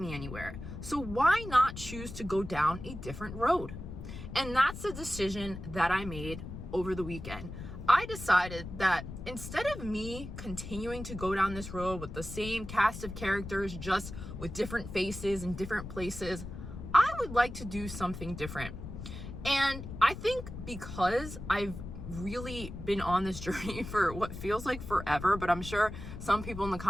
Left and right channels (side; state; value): left; noise; rumble, 10 dB below the sound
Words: anywhere. So why not choose to go down a different road? And that's the decision that I made over the weekend. I decided that instead of me continuing to go down this road with the same cast of characters, just with different faces and different places, I would like to do something different. And I think because I've really been on this journey for what feels like forever, but I'm sure some people in the